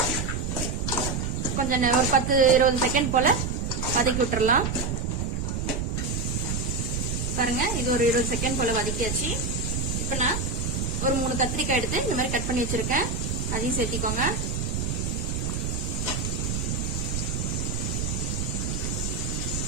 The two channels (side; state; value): right; noise; rumble, 1 dB below the sound